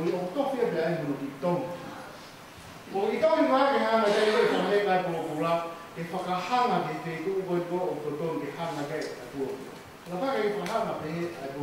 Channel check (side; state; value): both; identical; correlation 1.00